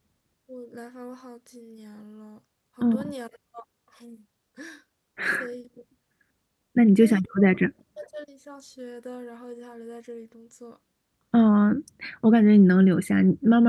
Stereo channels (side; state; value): both; identical; correlation 1.00